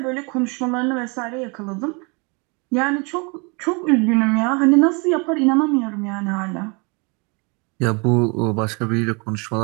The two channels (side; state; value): left; quieter; 31.2 dB